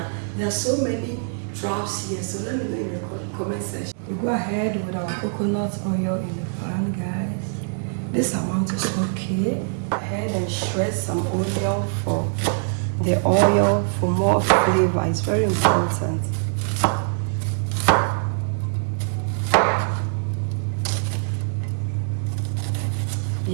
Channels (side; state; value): left; silent; digital silence